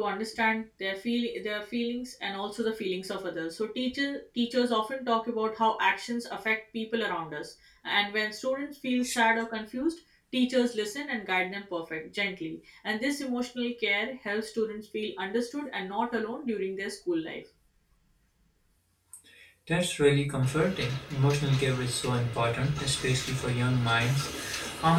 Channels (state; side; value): identical; both; correlation 1.00